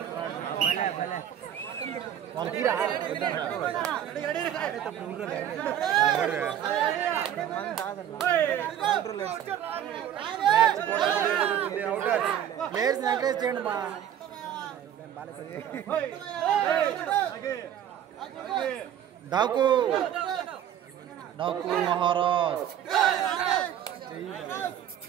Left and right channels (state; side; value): quieter; left; 10.3 dB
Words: ప్లేయర్స్ ఎంకరేజ్ చేయండి మా డాకు మహారాజ్.